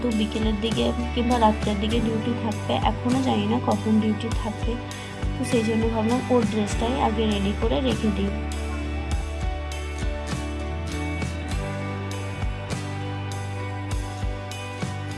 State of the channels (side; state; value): both; identical; correlation 1.00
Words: বিকেলের দিকে কিংবা রাত্রের দিকে ডিউটি থাকবে, এখনও জানি না কখন ডিউটি থাকবে, তো সেই জন্য ভাবলাম ওর ড্রেসটাই আগে রেডি করে রেখে দিই।